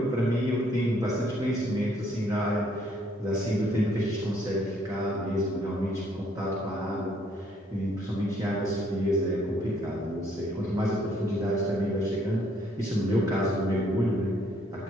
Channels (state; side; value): normal; both; correlation 0.66